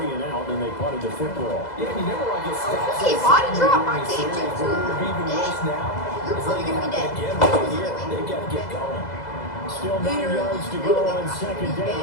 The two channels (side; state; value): right; late; 2.0 ms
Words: and out, and they punted the football. Yeah, you never like his stats. See, body drop, I can't Even do worse now. You're It's probably like gonna be dead. again right here. They got to get going. Still 9 yards to go on 2nd